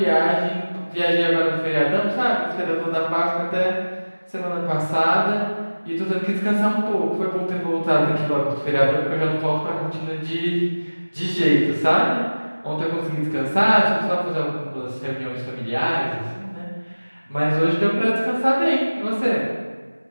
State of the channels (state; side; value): inverted; both; correlation -1.00